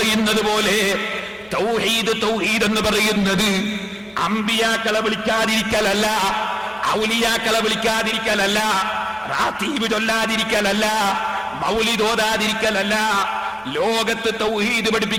പോലെ തൗഹീദ്, തൗഹീദ് എന്ന് പറയുന്നത് അമ്പിയാക്കളെ വിളിക്കാതിരിക്കലല്ല, ഔലിയാക്കളെ വിളിക്കാതിരിക്കലല്ല, റാത്തീബ് ചൊല്ലാതിരിക്കലല്ല, മൗലിദ് ഓതാതിരിക്കലല്ല. ലോകത്ത് തൗഹീദ്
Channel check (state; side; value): identical; both; correlation 1.00